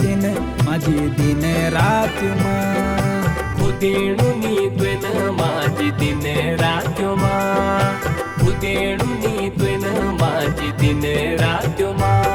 माझी दिन रात्यो माँ। खुदेणुनी त्वेन माझी दिन रात्यो माँ, खुदेणुनी त्वेन माझी दिन रात्यो माँ।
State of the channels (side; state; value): both; identical; correlation 1.00